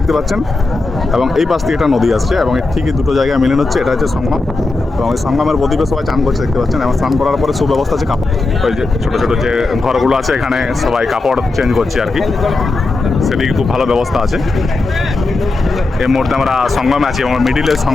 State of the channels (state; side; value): quieter; right; 3.4 dB